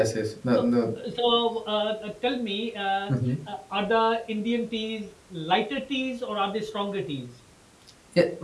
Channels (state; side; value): identical; both; correlation 1.00